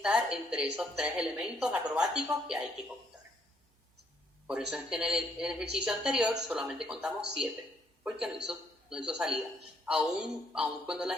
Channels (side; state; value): both; normal; correlation 0.70